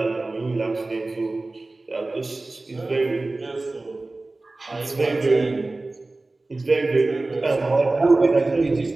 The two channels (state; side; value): quieter; left; 3.1 dB